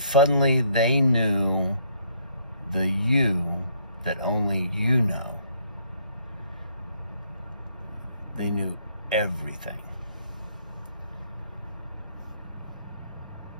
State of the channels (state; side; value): inverted; both; correlation -0.66